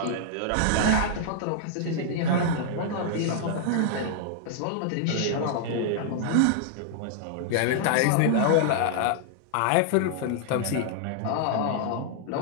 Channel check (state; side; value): different; both; correlation -0.01